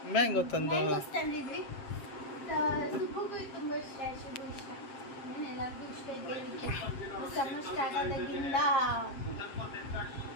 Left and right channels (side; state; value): right; late; 7.5 ms